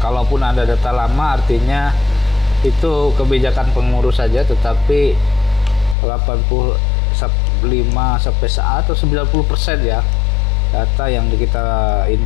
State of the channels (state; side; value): drops out; right; at 6.0 s